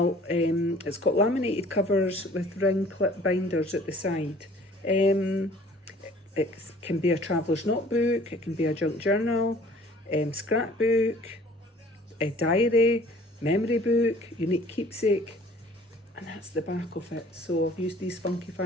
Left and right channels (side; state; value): both; normal; correlation 0.52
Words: It's got laminated covers with ring clip binders at the side. It can be a traveller's notebook, it can be a junk journal, scrapbook, a diary, memory book, unique keepsake, and that's the back of it. So I've used these funky